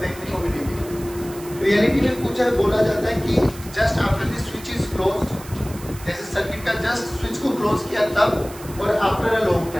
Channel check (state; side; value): noise; right; hiss, 17 dB below the sound